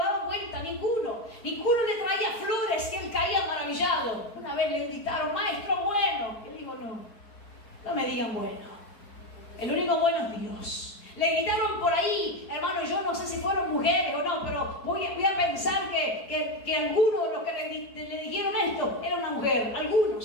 vuelta, ninguno. Ninguno le traía flores que él caía maravillado. Una vez le gritaron: maestro bueno. Él dijo: no me digan bueno. El único bueno es Dios. Le gritaron por ahí, hermano, yo no sé si fueron mujeres o no, pero voy a pensar que algunos de los que le dijeron esto era una mujer,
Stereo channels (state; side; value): late; right; 4.6 ms